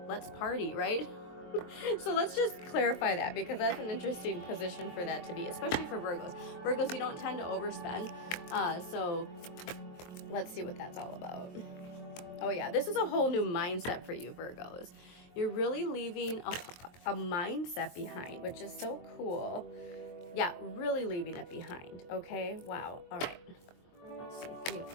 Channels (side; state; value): right; late; 23 ms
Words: let's party, right? So let's just clarify that, because that's an interesting position for that to be, especially for Virgos. Virgos, you don't tend to overspend. So let's see what that's all about. Oh yeah, this is a whole new mindset for you, Virgos. You're really leaving a mindset behind, which is so cool. Yeah, really leaving it behind. Okay, wow. All right. Let's see, Three of